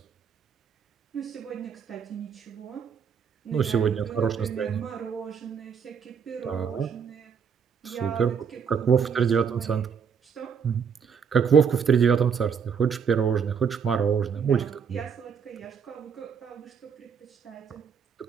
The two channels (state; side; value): quieter; left; 6.7 dB